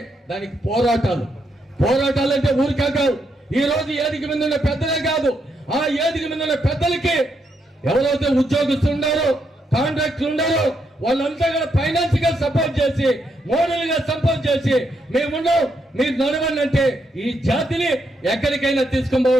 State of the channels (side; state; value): both; normal; correlation 0.79